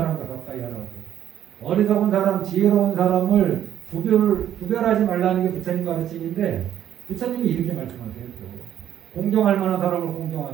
가까이 하라고. 어리석은 사람, 지혜로운 사람을 구별하지 말라는 게 부처님 가르침인데 부처님이 이렇게 말씀하세요. 공경할 만한 사람을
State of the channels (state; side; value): quieter; left; 10.7 dB